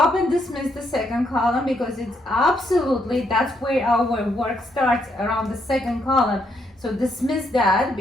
and dismiss the second column because it's absolutely, that's where our work starts, around the second column. So dismiss that,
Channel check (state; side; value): normal; both; correlation 0.75